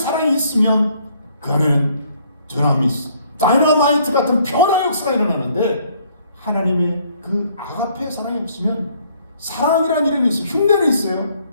있으면 그 안에는 드라미스, 다이너마이트 같은 변화 역사가 일어나는데, 하나님의 그 아가페의 사랑이 없으면 사랑이라는 이름이 있어요. 흉내는 있어요.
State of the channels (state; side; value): inverted; both; correlation -0.64